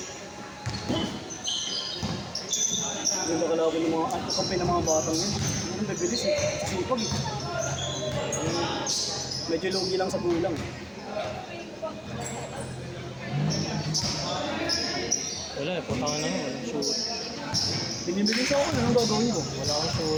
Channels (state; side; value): identical; both; correlation 1.00